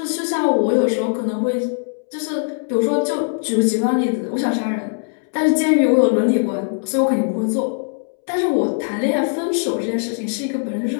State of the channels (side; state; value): right; silent; 66 dB below the other